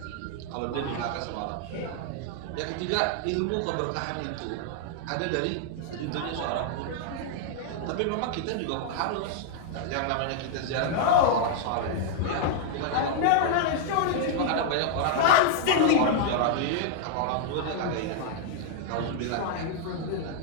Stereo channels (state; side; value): different; both; correlation -0.01